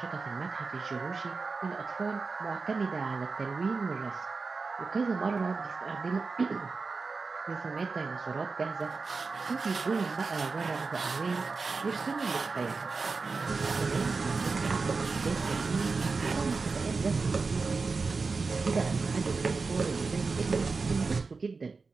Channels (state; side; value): quieter; left; 4.3 dB